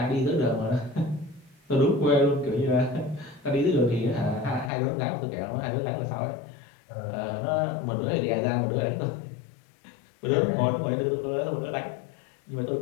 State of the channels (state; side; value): drops out; right; at 4.7 s